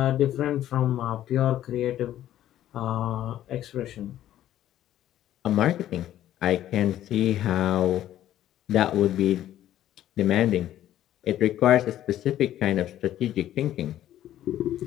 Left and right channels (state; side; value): quieter; right; 12.4 dB